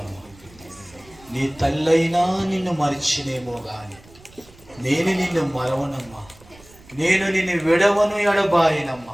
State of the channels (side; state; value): right; noise; rumble, 25 dB below the sound